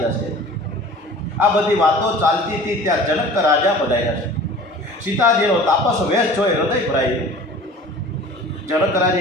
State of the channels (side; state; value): both; normal; correlation 0.43